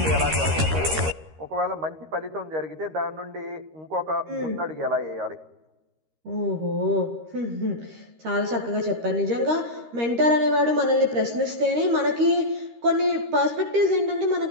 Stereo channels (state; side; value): late; left; 13 ms